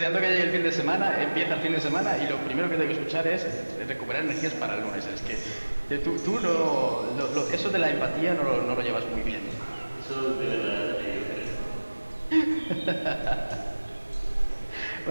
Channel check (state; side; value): inverted; both; correlation -1.00